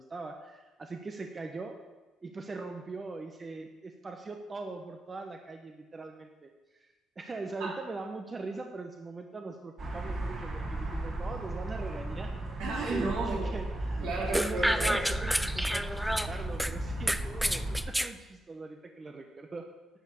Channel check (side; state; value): both; normal; correlation 0.90